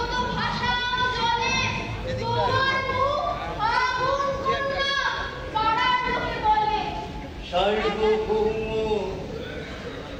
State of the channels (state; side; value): identical; both; correlation 1.00